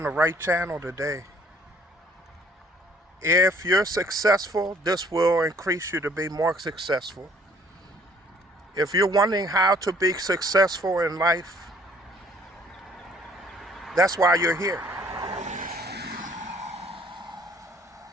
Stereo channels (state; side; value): normal; both; correlation 0.59